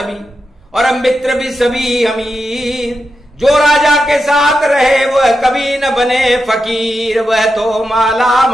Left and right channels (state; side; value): normal; both; correlation 0.88